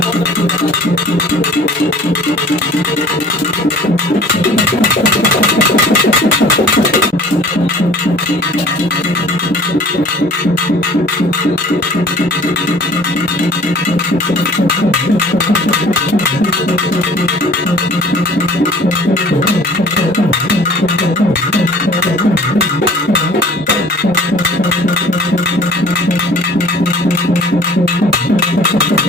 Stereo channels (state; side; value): normal; both; correlation 0.49